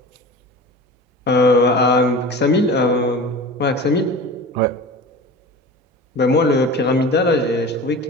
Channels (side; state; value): both; normal; correlation 0.35